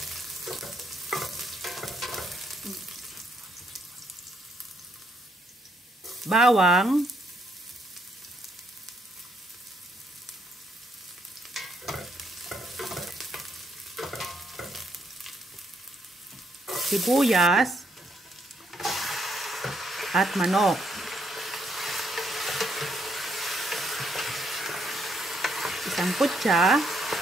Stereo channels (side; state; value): both; normal; correlation 0.73